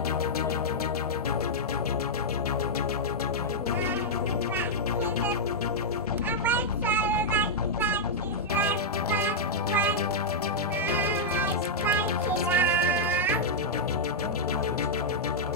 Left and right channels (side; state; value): both; normal; correlation -0.06